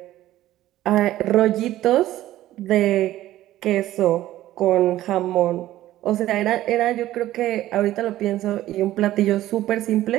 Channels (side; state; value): left; quieter; 14.4 dB